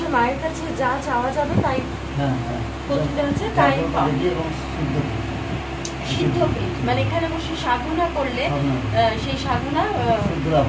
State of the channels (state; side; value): identical; both; correlation 1.00